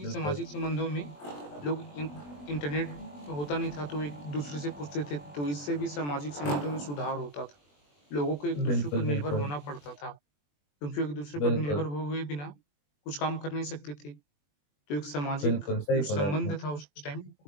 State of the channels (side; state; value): right; late; 21 ms